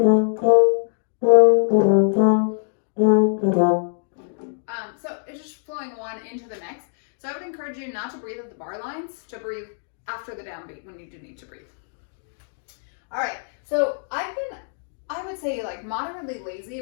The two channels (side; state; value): right; silent; digital silence